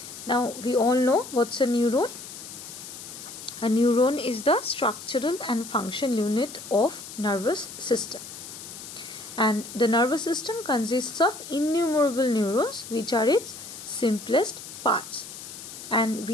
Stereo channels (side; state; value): left; noise; hiss, 12 dB below the sound